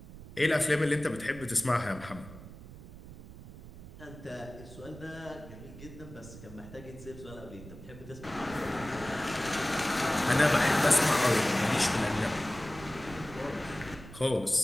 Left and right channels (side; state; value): right; noise; rumble, 16 dB below the sound